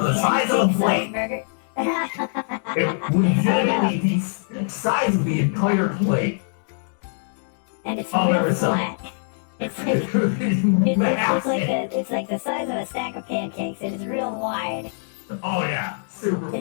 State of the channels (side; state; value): right; silent; digital silence